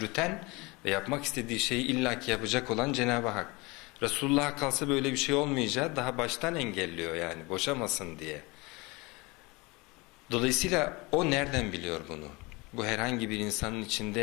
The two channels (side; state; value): right; quieter; 25.1 dB